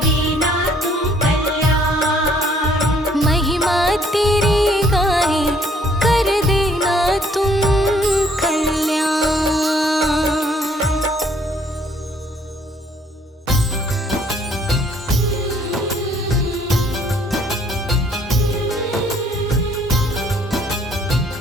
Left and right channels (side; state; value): both; normal; correlation 0.63